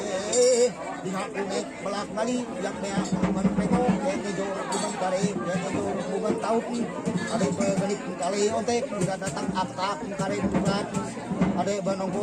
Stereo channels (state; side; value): identical; both; correlation 1.00